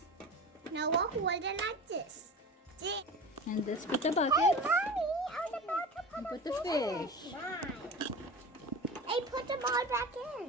Noah, hold it like this. And let's put the buckets. Hey, Mommy, I was about to And put the fish. Hey, put them all back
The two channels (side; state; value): both; normal; correlation 0.33